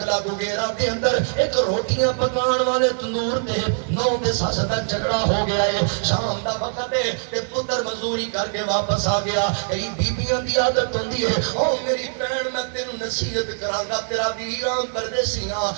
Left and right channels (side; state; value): left; silent; digital silence